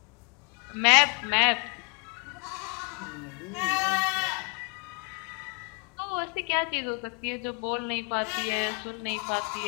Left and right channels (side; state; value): right; quieter; 32.5 dB